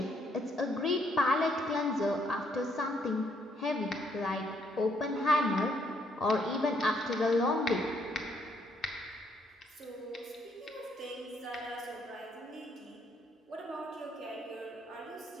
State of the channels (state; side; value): normal; both; correlation 0.71